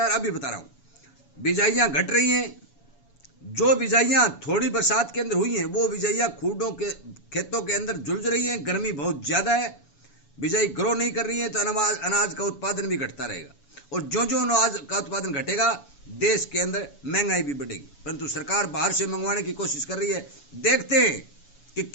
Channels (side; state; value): right; late; 7.1 ms